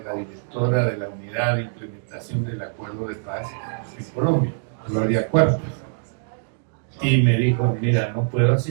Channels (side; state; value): left; silent; digital silence